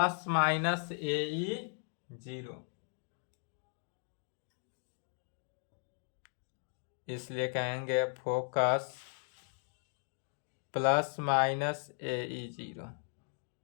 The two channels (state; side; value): silent; right; 53 dB below the other